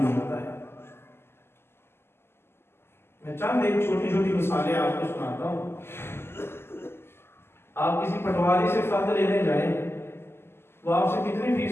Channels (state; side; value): late; right; 0.12 ms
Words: ہوتا ہے. میں چند ایک چھوٹی چھوٹی مثالیں آپ کو سناتا ہوں. آپ کسی پٹواری سے فرد لینے جائیں، وہ آپ سے کتنی